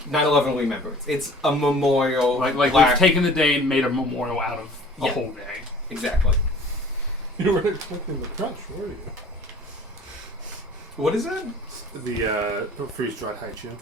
Remembrance. It's a memorial. Like we've taken the day and made a memorial out of a Yeah. whole day. Exactly. You weren't expecting the crunch, were you? What is that? The freeze-dried haichu.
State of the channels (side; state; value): both; normal; correlation 0.48